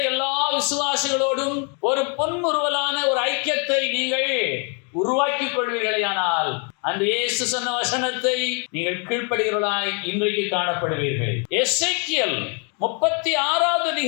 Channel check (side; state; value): right; quieter; 37.3 dB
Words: எல்லா விசுவாசிகளோடும் ஒரு பொன்முறுவலான ஒரு ஐக்கியத்தை நீங்கள் உருவாக்கிக் கொள்வீர்களேயானால், அந்த இயேசு சொன்ன வசனத்தை நீங்கள் கீழ்ப்படுகிறவர்களாய் இன்றைக்கு காணப்படுவீர்கள். எசேக்கியேல் 36வது